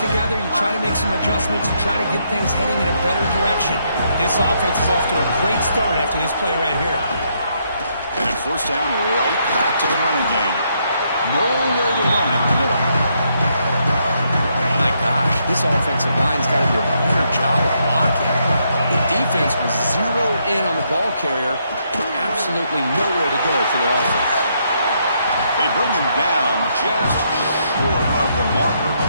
you try to make some adjustments, you try to get things heading in a better direction. This offense is off to a great start after this play right here. And at first down, right back to the running game. Nowhere to run up the middle. My gosh, this offensive line's got to do a better job of blocking. The defense was zeroed in on the ball carrier and absolutely nowhere to go for the offense. They bring him down just short of the marker,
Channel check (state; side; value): inverted; both; correlation -0.75